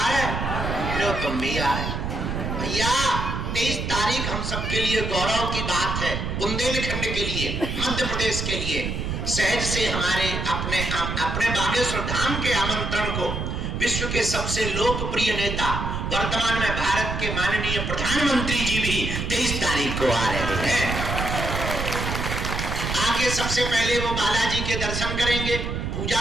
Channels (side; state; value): right; noise; rumble, 3 dB below the sound